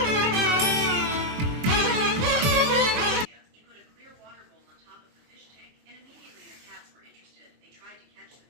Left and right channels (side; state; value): left; late; 23 ms